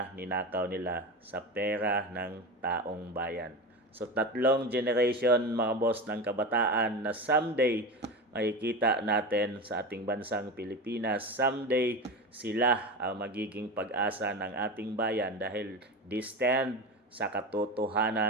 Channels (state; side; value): normal; both; correlation 0.24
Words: ninakaw nila sa pera ng taong bayan. So 3 generation mga boss ng kabataan na someday makikita natin sa ating bansang Pilipinas. Someday sila ang magiging pag-asa ng ating bayan dahil they stand sa